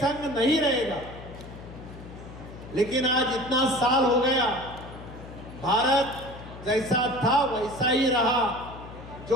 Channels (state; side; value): noise; left; hum, 15 dB below the sound